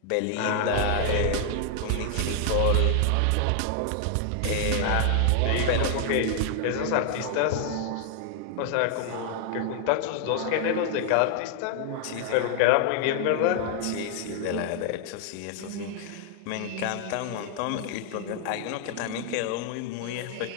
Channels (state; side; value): different; both; correlation 0.00